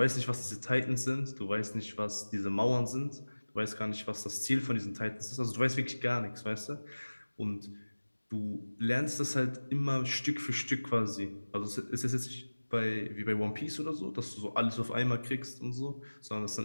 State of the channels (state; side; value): inverted; both; correlation -1.00